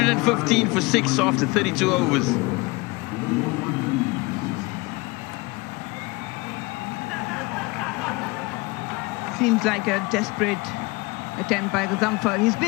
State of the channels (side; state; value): right; quieter; 24.7 dB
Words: for 6 after 32 overs. Seems like a desperate attempt by Gazamfar. He's